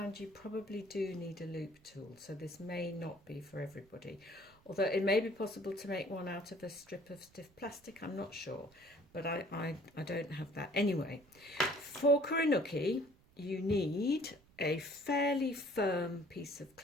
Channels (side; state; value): right; noise; rumble, 29 dB below the sound